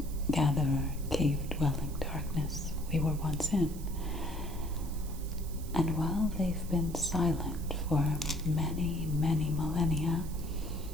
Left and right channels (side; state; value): right; noise; hiss, 17 dB below the sound